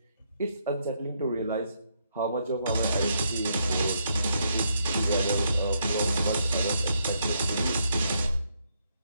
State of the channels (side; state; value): both; inverted; correlation -0.75